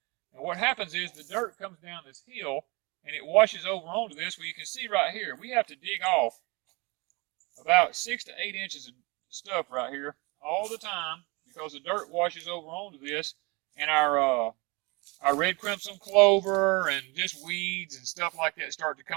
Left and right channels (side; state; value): left; quieter; 27.3 dB